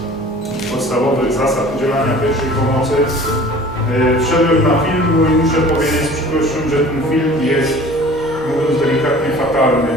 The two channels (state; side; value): normal; both; correlation 0.46